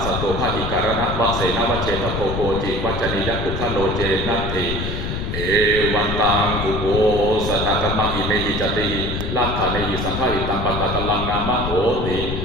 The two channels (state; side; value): noise; left; rumble, 4 dB below the sound